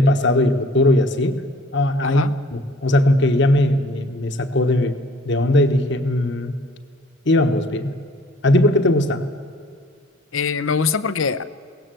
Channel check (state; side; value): normal; both; correlation 0.53